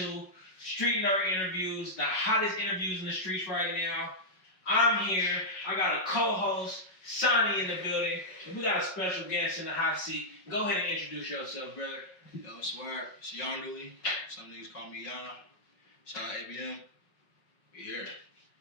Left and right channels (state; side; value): late; right; 5.4 ms